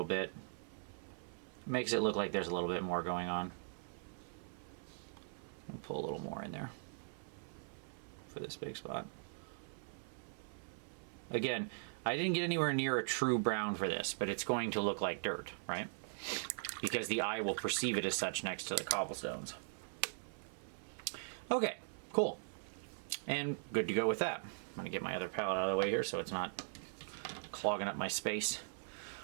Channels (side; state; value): left; silent; 51 dB below the other